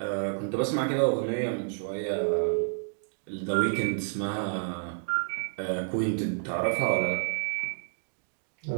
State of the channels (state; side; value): silent; left; digital silence